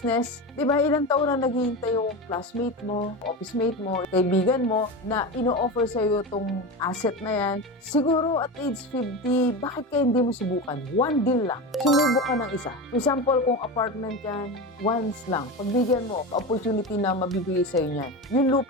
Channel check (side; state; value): both; normal; correlation 0.23